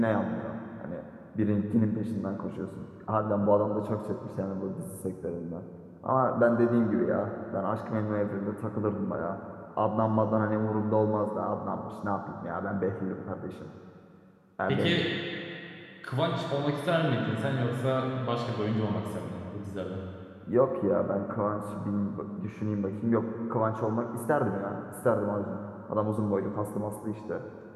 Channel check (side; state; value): both; identical; correlation 1.00